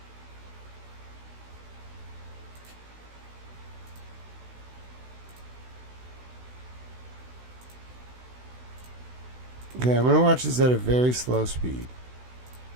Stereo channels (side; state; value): left; late; 16 ms